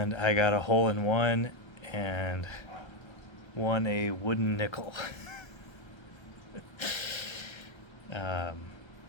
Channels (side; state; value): right; late; 1.3 ms